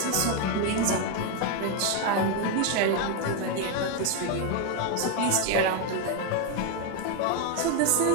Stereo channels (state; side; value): different; both; correlation 0.01